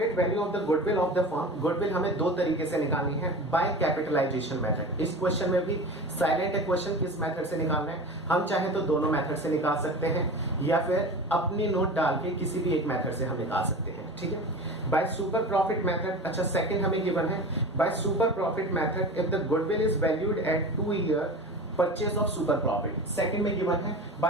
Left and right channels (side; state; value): both; normal; correlation 0.32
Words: value of the goodwill of the firm. Goodwill हमें दो तरीके से निकालनी है, बाय कैपिटलाइजेशन मेथड. इस क्वेश्चन में भी साइलेंट है क्वेश्चन किस मेथड से निकालना है. हम चाहे तो दोनों मेथड से निकाल सकते हैं या फिर अपनी नोट डाल के किसी भी एक मेथड से हम निकाल सकते हैं. ठीक है, बाय सुपर प्रॉफिट मेथड. अच्छा, सेकंड हमें गिवन है by super profit method if the goodwill is valued at 2 year purchase of super profit. Second में गिवन है